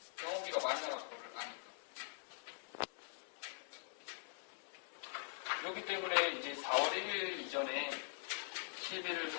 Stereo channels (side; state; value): right; silent; digital silence